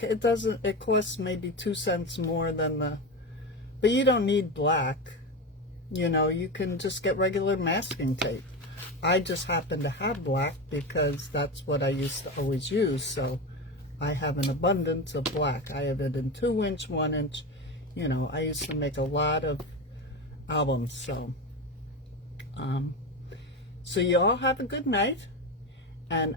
it costs maybe 2 cents more than but you don't need black. You know, you can just get regular masking tape. I just happen to have black because that's what I used to always use. So I have an abundance of black. I have it in 2-inch, 1-inch. You know, I used to make a lot of albums. So, so you all have a good night, and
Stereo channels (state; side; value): normal; both; correlation 0.21